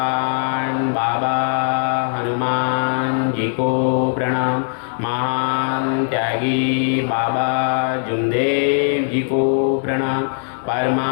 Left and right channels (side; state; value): right; silent; digital silence